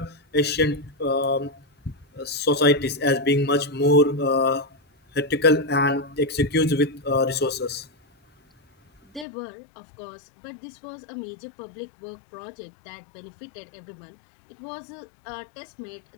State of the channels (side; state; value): right; drops out; at 9.2 s